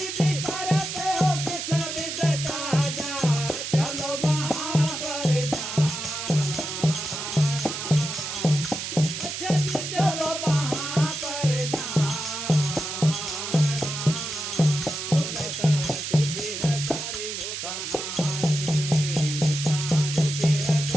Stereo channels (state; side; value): noise; right; hiss, 5 dB below the sound